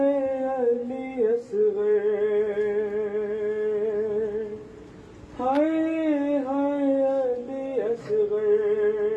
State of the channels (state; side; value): identical; both; correlation 1.00